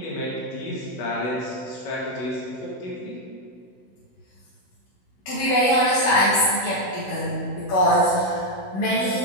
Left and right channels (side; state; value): right; late; 16 ms